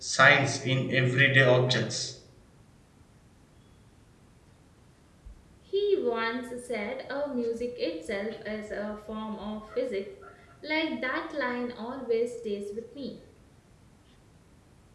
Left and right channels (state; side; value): identical; both; correlation 1.00